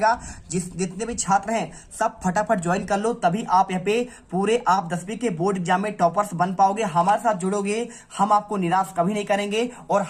जितने भी छात्र हैं सब फटाफट ज्वाइन कर लो, तभी आप यहाँ पे पूरे आप 10वीं के बोर्ड एग्जाम में टॉपर्स बन पाओगे। हमारे साथ जुड़ोगे, हम आपको निराश कभी नहीं करेंगे और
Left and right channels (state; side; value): identical; both; correlation 1.00